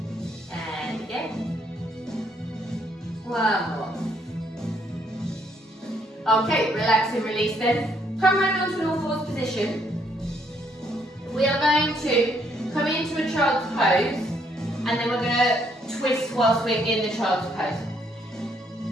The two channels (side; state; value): both; normal; correlation 0.70